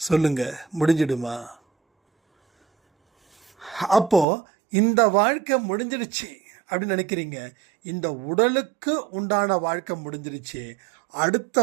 சொல்லுங்க, முடிஞ்சிடுமா? அப்போ இந்த வாழ்க்கை முடிஞ்சிடுச்சு அப்படின்னு நினைக்கிறீங்க, இந்த உடலுக்கு உண்டான வாழ்க்கை முடிஞ்சிடுச்சு,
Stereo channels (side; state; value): left; drops out; at 4.2 s